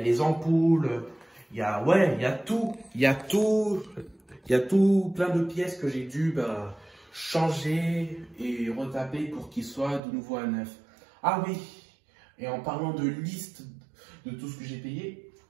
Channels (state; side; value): drops out; left; at 10.0 s